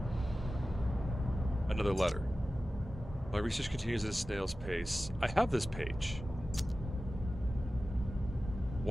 Another letter. My research continues at a snail's pace. I have this page.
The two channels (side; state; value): both; normal; correlation 0.95